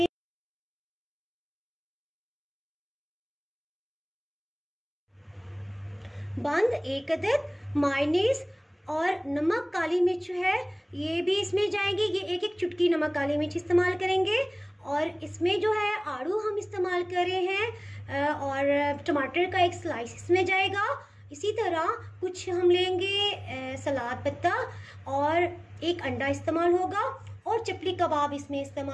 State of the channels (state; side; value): identical; both; correlation 1.00